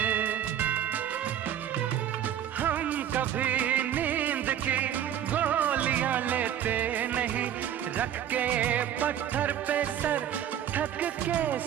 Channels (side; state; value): left; quieter; 10.3 dB